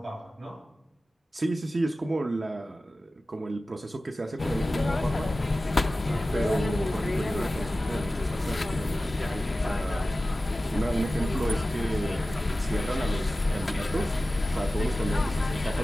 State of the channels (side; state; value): both; normal; correlation 0.95